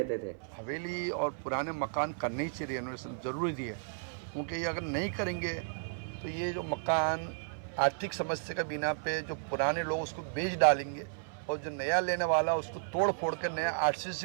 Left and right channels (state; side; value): silent; left; 55 dB below the other